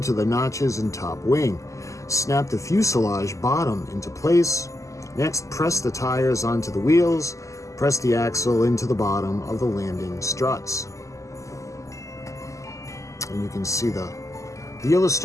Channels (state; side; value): late; right; 0.16 ms